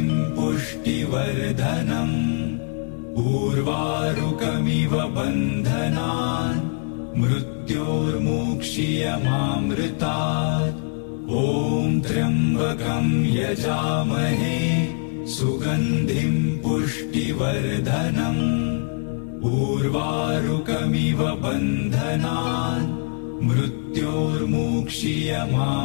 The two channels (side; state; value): right; quieter; 39.6 dB